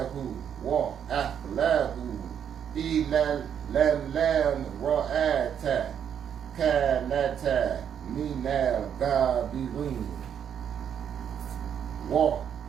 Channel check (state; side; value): quieter; left; 8.6 dB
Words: Wa Ahlahu Ila Lam Ra'ata Kanata Minal Gabirin Wa